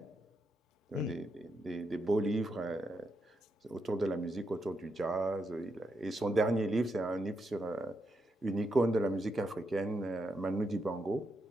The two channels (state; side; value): normal; both; correlation 0.82